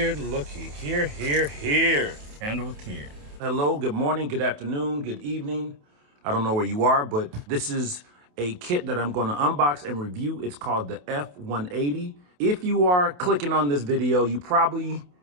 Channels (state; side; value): late; left; 28 ms